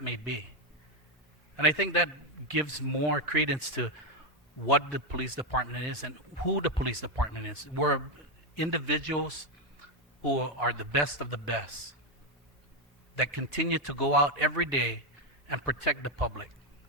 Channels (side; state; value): both; normal; correlation 0.05